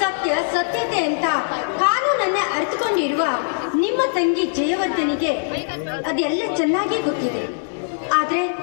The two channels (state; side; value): silent; right; digital silence